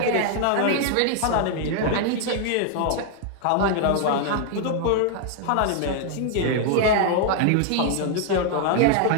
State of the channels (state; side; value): different; both; correlation 0.00